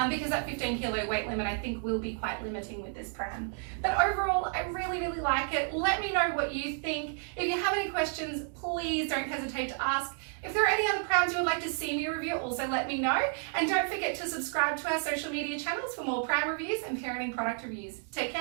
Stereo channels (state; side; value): silent; left; 55 dB below the other